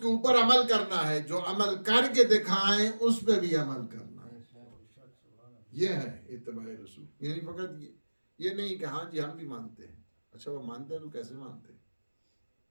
کے اوپر عمل کرنا ہے، جو عمل کر کے دکھائیں اس پہ بھی عمل کرنا ہے. یہ ہے اتباع رسول. یعنی فقط یہ نہیں کہ ہاں جی ہم بھی مانتے ہیں. اچھا وہ مانتے ہیں تو کیسے مانتے ہیں؟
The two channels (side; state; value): both; inverted; correlation -1.00